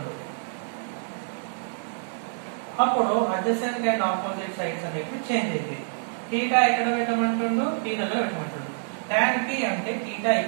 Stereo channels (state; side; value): silent; left; digital silence